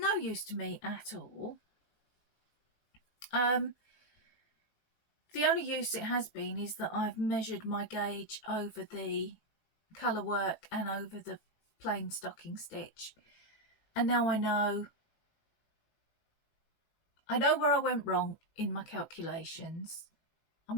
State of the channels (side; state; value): right; late; 18 ms